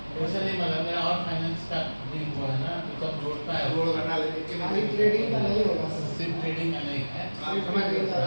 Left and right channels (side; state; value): both; inverted; correlation -1.00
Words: वैसे नहीं मतलब मेरा और फाइनेंस का भी हुआ है ना, तो सब जोड़ता है। रोड करना लेकिन खाली ट्रेडिंग का नहीं होगा सर, सिर्फ ट्रेडिंग का नहीं है। समझ गए।